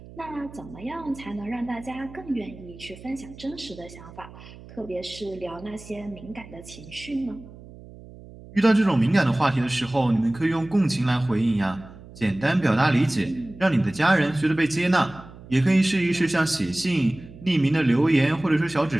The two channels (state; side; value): noise; right; hum, 18 dB below the sound